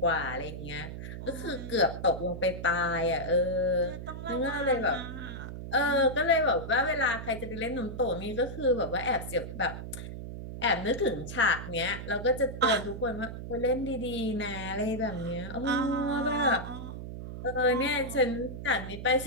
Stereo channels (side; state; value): right; noise; hum, 8 dB below the sound